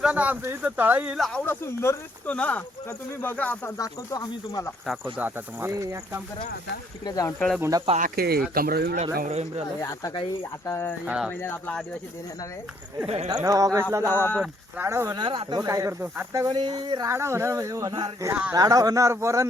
आमचं इथं तळा येईल आवडा सुंदर दिसतो ना, तर तुम्ही बघा आता दाखवतो आम्ही तुम्हाला. दाखवतो आता तुम्हाला. एक काम करा, आता तिकडे जाऊन तळ गुंडा पाक आहे कमरा विमराला. आता काही आता एक महिन्यात आपला आदिवासी दिन येणार आहे. 9 ऑगस्टला जाऊ आपण. राडा होणार आता. काय करतो आता कोणी राडा होणार म्हणजे होणार. राडा होणार. पोरं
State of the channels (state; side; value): normal; both; correlation 0.68